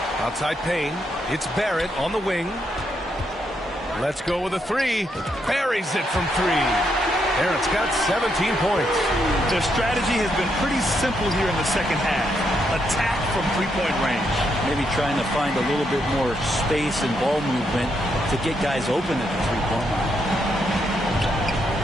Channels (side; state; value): both; normal; correlation 0.78